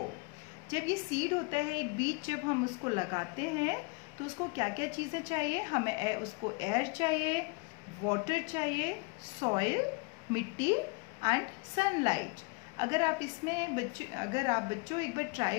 जब ये seed होता है, एक बीज जब हम उसको लगाते हैं तो उसको क्या क्या चीज़ें चाहिए हमें? उसको एयर चाहिए, वाटर चाहिए, सॉइल, मिट्टी एंड सनलाइट. अगर आप बच्चों एक बार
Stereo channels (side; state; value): right; quieter; 29.4 dB